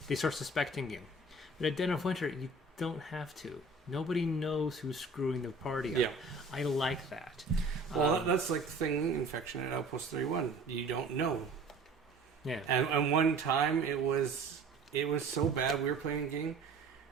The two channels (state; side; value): quieter; left; 3.1 dB